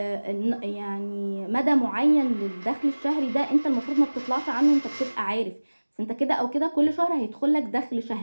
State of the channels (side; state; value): both; inverted; correlation -1.00